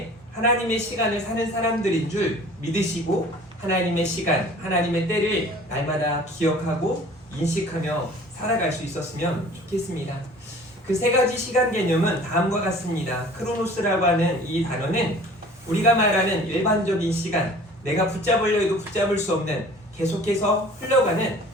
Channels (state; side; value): normal; both; correlation 0.47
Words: 하나님의 시간을 사는 사람들인 줄 믿으시고 하나님의 시간, 하나님의 때를 날마다 기억하고 인식하며 살아갈 수 있었으면 좋겠습니다. 그 세 가지 시간 개념은 다음과 같습니다. 크로노스라고 하는 이 단어는 우리가 말하는 일반적인 시간, 내가 붙잡으려 해도 붙잡을 수 없는 계속해서 흘러가는